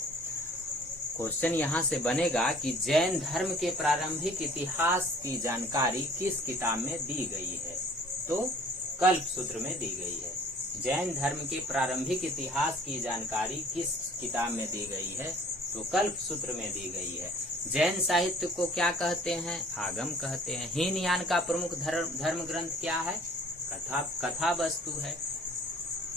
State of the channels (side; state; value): both; normal; correlation 0.52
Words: क्वेश्चन यहाँ से बनेगा कि जैन धर्म के प्रारंभिक इतिहास की जानकारी किस किताब में दी गई है, तो कल्प सूत्र में दी गई है। जैन धर्म के प्रारंभिक इतिहास की जानकारी किस किताब में दी गई है, तो कल्प सूत्र में दी गई है। जैन साहित्य को क्या कहते हैं? आगम कहते हैं। हीनयान का प्रमुख धर्म ग्रंथ क्या है? कथा वस्तु है।